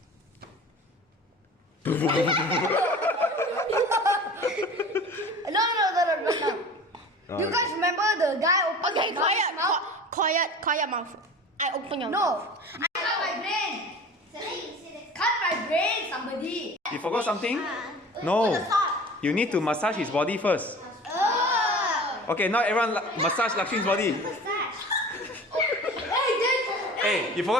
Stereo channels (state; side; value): normal; both; correlation 0.40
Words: No. You guys remember the guy opened Okay, his mouth? quiet mouth. I open your No. mouth. I cut my brain. Cut my brain, somebody. You forgot something? No. You need to massage his body first. Okay, now everyone massage Lakshmi's body. Hey, you